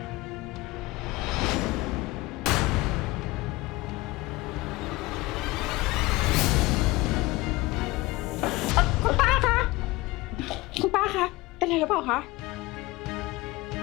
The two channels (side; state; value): right; quieter; 20.7 dB